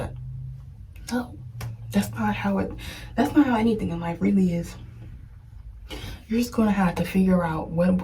No, that's not how anything in life really is. You're just going to have to figure out what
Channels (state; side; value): identical; both; correlation 1.00